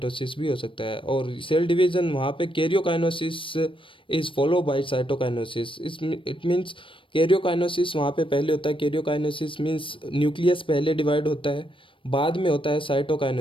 भी हो सकता है। और सेल डिवीजन वहाँ पे karyokinesis is follow by cytokinesis, it means karyokinesis वहाँ पे पहले होता है। कैरियोकाइनोसिस मीन्स न्यूक्लियस पहले डिवाइड होता है, बाद में होता है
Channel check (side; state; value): right; late; 0.25 ms